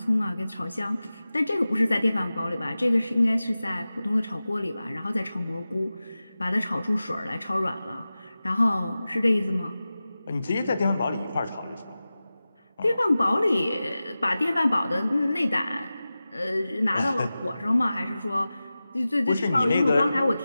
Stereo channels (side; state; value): both; inverted; correlation -0.95